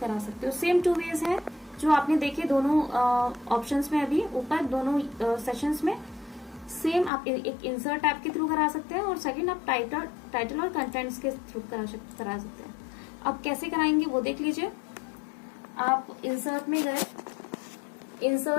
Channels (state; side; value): drops out; right; at 7.1 s